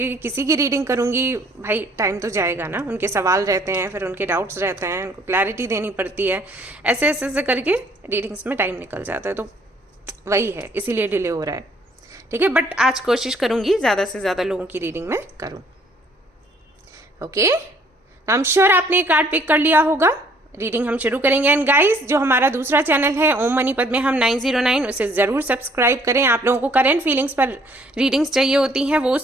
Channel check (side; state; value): both; normal; correlation 0.61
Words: किसी की रीडिंग करूँगी भाई, टाइम तो जाएगा ना। उनके सवाल रहते हैं, फिर उनके डाउट्स रहते हैं, उनको क्लैरिटी देनी पड़ती है, ऐसे ऐसे ऐसे करके रीडिंग्स में टाइम निकल जाता है। तो वही है, इसीलिए डिले हो रहा है, ठीक है। बट आज कोशिश करूँगी ज़्यादा से ज़्यादा लोगों की रीडिंग में करूँ। ओके, आई एम श्योर आपने कार्ड पिक कर लिया होगा। रीडिंग हम शुरू करेंगे। एंड गाइस, जो हमारा दूसरा चैनल है ओम मणिपत में हम 909, उसे ज़रूर सब्सक्राइब करें। आप लोगों को करंट फीलिंग्स पर रीडिंग्स चाहिए होती हैं, वो